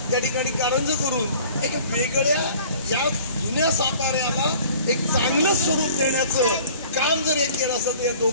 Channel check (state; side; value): inverted; both; correlation -0.48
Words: त्या ठिकाणी कारंज करून एक वेगळ्या या जुन्या साताऱ्याला एक चांगलं स्वरूप देण्याचं काम जर हे केलं असेल तर या